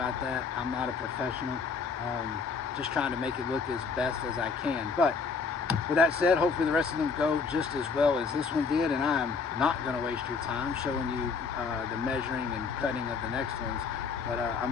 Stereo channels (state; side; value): quieter; right; 5.1 dB